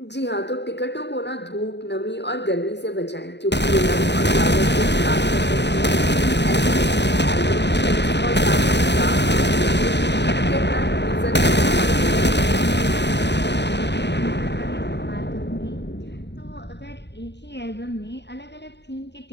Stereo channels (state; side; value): late; right; 0.50 ms